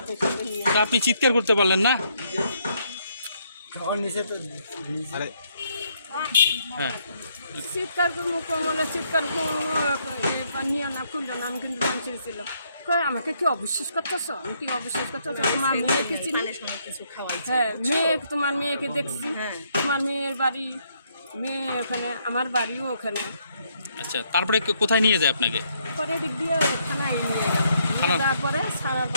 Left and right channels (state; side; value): inverted; both; correlation -0.72